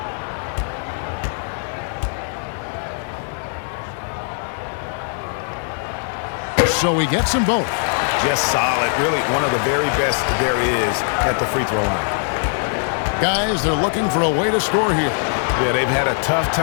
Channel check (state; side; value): silent; right; 58 dB below the other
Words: So he gets them both. Just solid. Really one of the very best there is at the free throw line. Guys, they're looking for a way to score here. Yeah, they've had a tough